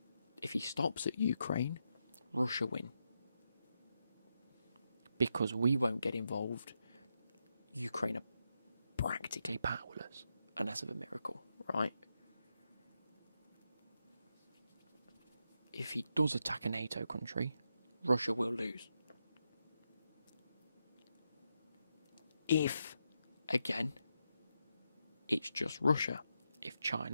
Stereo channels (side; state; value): both; inverted; correlation -0.84